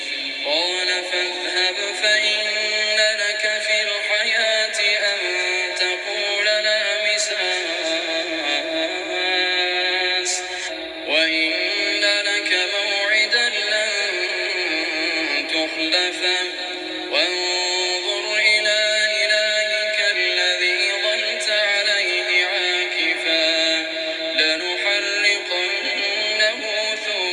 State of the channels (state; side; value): identical; both; correlation 1.00